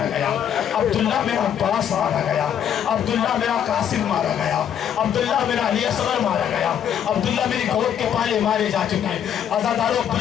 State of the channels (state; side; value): quieter; right; 9.2 dB